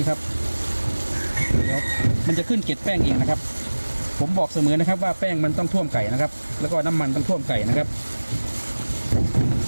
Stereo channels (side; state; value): both; inverted; correlation -1.00